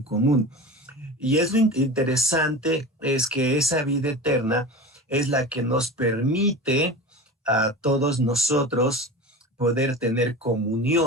común. Y es lo interesante es que esa vida eterna es la que nos permite a todos nosotros poder tener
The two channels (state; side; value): normal; both; correlation 0.32